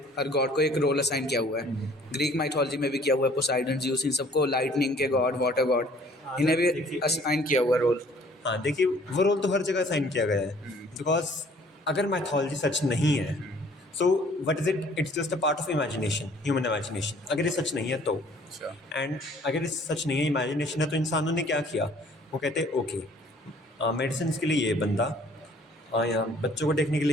हर गॉड को एक रोल असाइन किया हुआ है, ग्रीक माइथोलॉजी में भी किया हुआ है। पोसाइडन, ज्यूस, इन सबको लाइटनिंग के गॉड, वाटर गॉड, इन्हें भी देखिए- असाइन किया हुआ रोल। हाँ देखिए, वो रोल तो हर जगह साइन किया गया है। बिकॉज अगर मैथोलॉजी सच नहीं है, so what is it? It's just a part of imagination, human imagination. अगर ये सच नहीं है तो, एंड अगर ये सच नहीं है, इमेजिनेशन है, तो इंसानों ने क्या किया? वो कहते हैं ओके, मेडिसिन के लिए ये बंदा, यहाँ बच्चों को देखने के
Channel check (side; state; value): both; normal; correlation 0.56